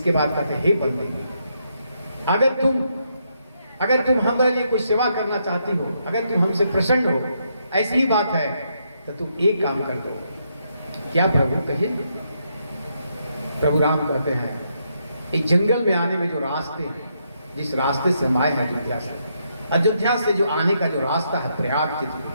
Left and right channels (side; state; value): both; inverted; correlation -0.78